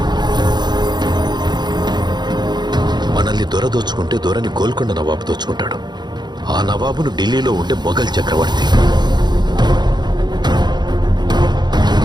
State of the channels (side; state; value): left; late; 0.21 ms